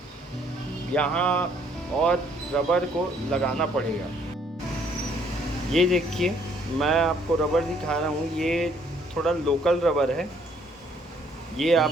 यहाँ और रबर को लगाना पड़ेगा। ये देखिए, मैं आपको रबर दिखा रहा हूँ, ये थोड़ा लोकल रबर है, ये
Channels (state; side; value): normal; both; correlation 0.64